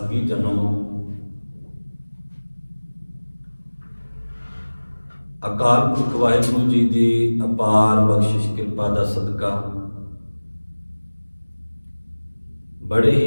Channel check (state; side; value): inverted; both; correlation -1.00